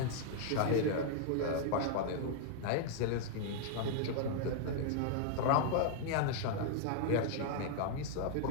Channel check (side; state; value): both; different; correlation 0.00